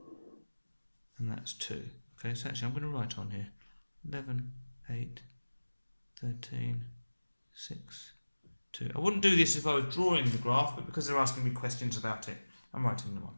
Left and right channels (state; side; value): inverted; both; correlation -1.00